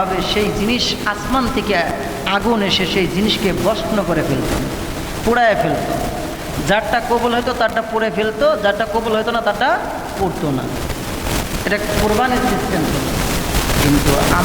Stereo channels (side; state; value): both; identical; correlation 1.00